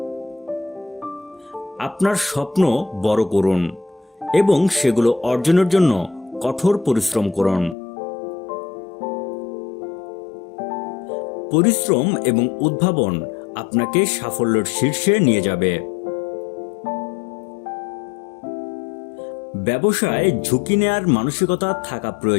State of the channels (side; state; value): right; drops out; at 7.8 s